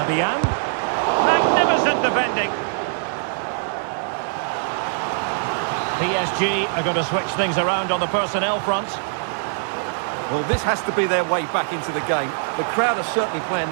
Magnificent defending. PSG are going to switch things around on the personnel front. Well, this has to be their way back into the game. The crowd are certainly playing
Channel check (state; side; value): silent; left; digital silence